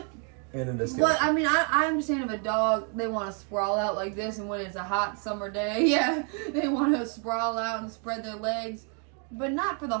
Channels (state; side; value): quieter; left; 39.9 dB